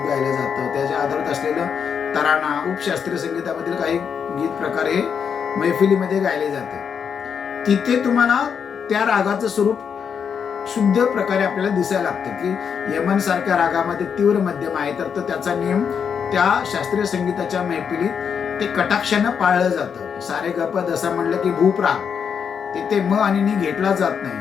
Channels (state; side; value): quieter; right; 7.0 dB